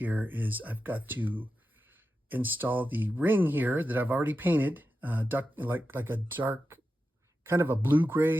is I've got to install the ring here that I've already painted, like a dark, kind of a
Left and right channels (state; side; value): normal; both; correlation 0.90